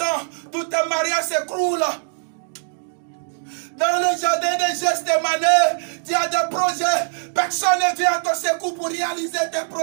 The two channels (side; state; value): left; silent; digital silence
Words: tout tes mariages s'écroulent. Dans le jardin de Gethsémani, tu as des projets. Personne ne vient à ton secours pour réaliser tes